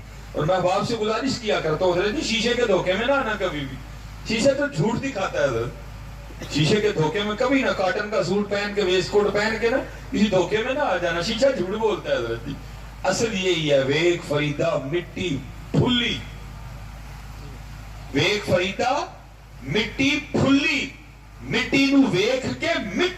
اور میں باپ سے گزارش کیا کرتا ہوں حضرت جی شیشے کے دھوکے میں نہ آنا کبھی بھی. شیشے تو جھوٹ دکھاتا ہے حضرت. شیشے کے دھوکے میں کبھی نہ، کاٹن کا سوٹ پہن کے ویسٹ کوٹ پہن کے نا کسی دھوکے میں نہ آ جانا. شیشہ جھوٹ بولتا ہے حضرت جی. اصل یہی ہے ویک فریدہ مٹی پھلی. ویک فریدہ مٹی پھلی، مٹی نو ویکھ کے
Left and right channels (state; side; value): identical; both; correlation 1.00